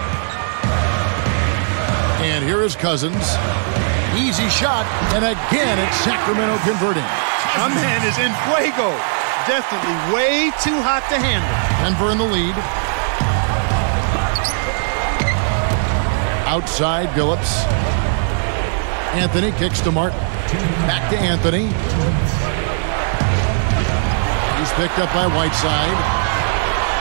And here is Cousins. Easy shot, and again it's Sacramento converting. My man is in fuego. Definitely way too hot to handle. Denver in the lead. Outside, Billups. Anthony kicks to Martin. Back to Anthony. He's picked up by Whiteside.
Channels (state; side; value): silent; left; digital silence